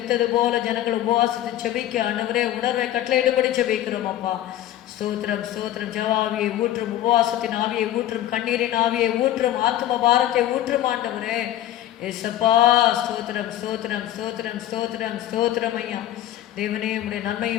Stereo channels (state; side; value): quieter; right; 12.8 dB